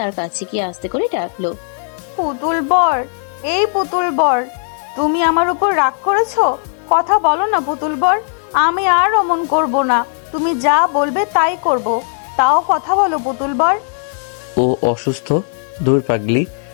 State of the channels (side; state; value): right; silent; digital silence